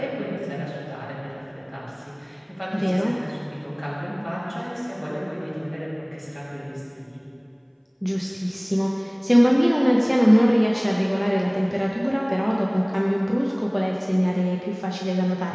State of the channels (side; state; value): both; identical; correlation 1.00